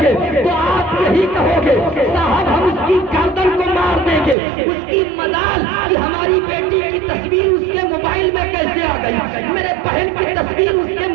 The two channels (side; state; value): left; drops out; at 4.4 s